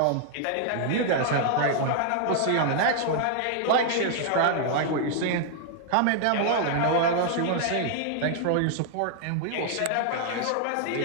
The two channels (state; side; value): different; both; correlation 0.00